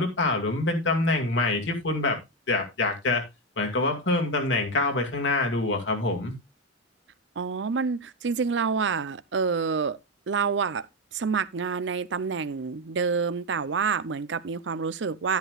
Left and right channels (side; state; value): both; normal; correlation 0.08